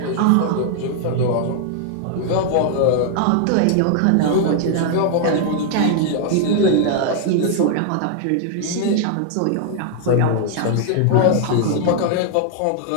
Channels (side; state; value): both; different; correlation 0.00